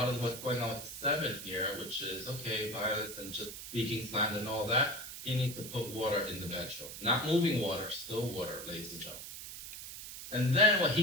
of what's going on with the 7 here, which is, okay, violence and just speaking slander and all that, he needs to put water in the bedroom. Not moving water, still water, ladies and gentlemen. And then what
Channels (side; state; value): right; noise; hiss, 10 dB below the sound